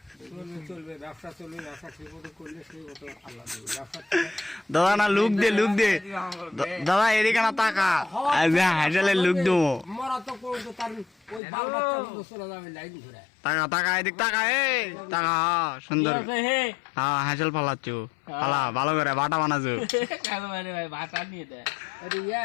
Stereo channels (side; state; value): right; drops out; at 11.4 s